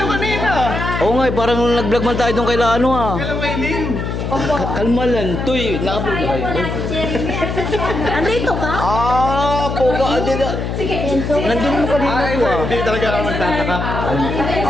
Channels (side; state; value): left; noise; hum, 3 dB below the sound